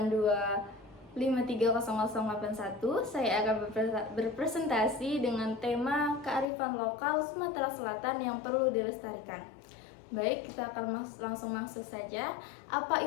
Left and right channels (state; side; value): drops out; right; at 6.5 s